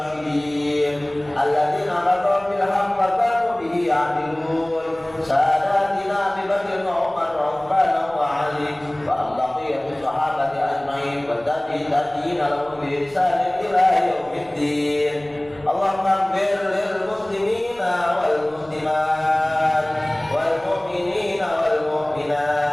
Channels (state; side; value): noise; left; rumble, 28 dB below the sound